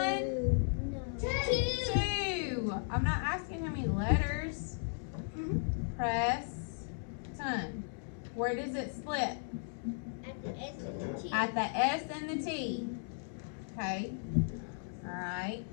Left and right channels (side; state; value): right; silent; digital silence